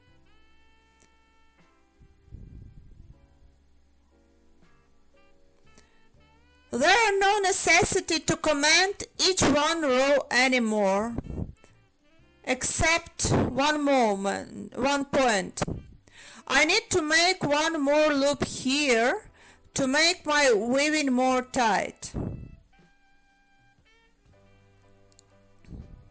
There are no necessity to comment each one row anymore, except one point. I need to make one more loop here to make my weaving more tight.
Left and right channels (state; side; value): identical; both; correlation 1.00